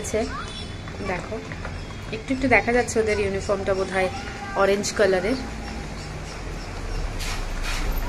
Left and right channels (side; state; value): both; identical; correlation 1.00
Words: দেখো একটু একটু দেখা যাচ্ছে, ওদের ইউনিফর্মটা বোধহয় অরেঞ্জ কালারের।